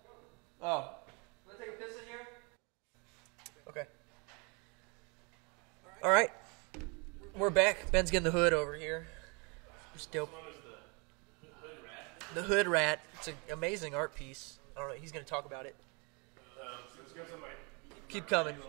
Oh. Want to take a piss in here? Okay. All right. We're back. Ben's getting the hood over here. It's dope. The Hood Rat. It's an amazing art piece. I don't know. He's going to talk about it. Keep coming.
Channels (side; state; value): left; quieter; 31.9 dB